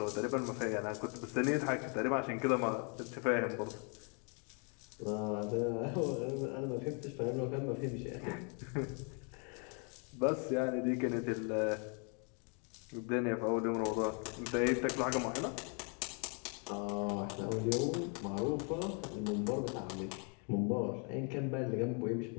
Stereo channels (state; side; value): quieter; right; 37.8 dB